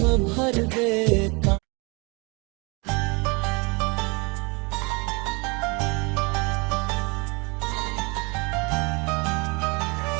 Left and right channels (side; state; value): left; quieter; 29.1 dB